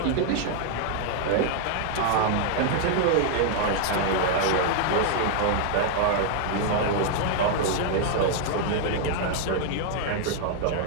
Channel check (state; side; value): different; both; correlation 0.00